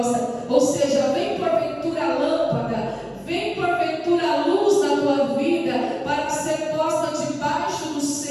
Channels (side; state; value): both; identical; correlation 1.00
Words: Ou seja, vem porventura a lâmpada, vem porventura a luz na tua vida para ser posta debaixo do